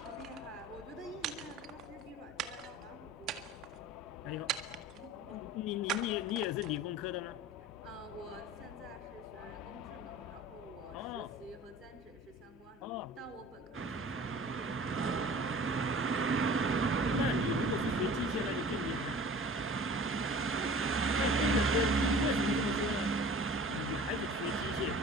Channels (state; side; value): normal; both; correlation 0.43